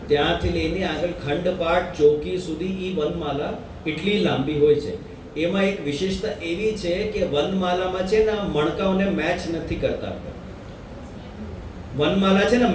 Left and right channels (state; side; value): identical; both; correlation 1.00